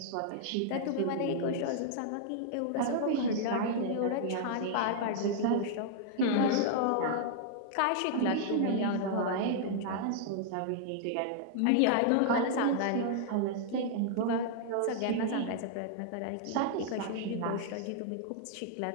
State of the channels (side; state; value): both; different; correlation -0.01